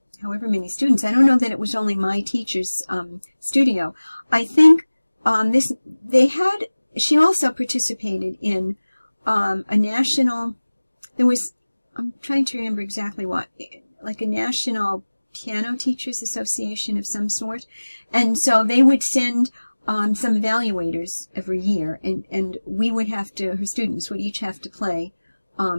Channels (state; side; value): inverted; both; correlation -1.00